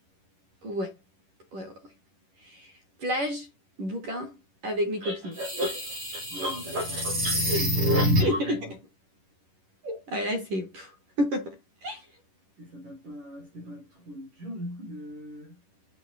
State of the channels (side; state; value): left; late; 11 ms